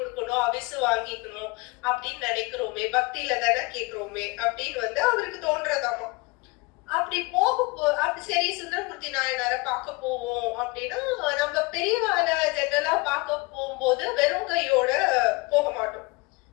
அவிசு வாங்கிக்கணும் அப்படின்னு நினைக்கிறோமே, பக்தியில தானே கேக்குறோமே அப்படின்னு வந்து அவருக்கு தோன்றதாமா. அப்படி அப்படி சரி சுந்தரமூர்த்தி நாயனார பார்க்க போவோம் அப்படின்னா, நம்ம பெரியவாள ஜெனரலா பார்க்க போகும்போது வெறும் கையோட போக மாட்டோம்.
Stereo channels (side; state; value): right; quieter; 25.4 dB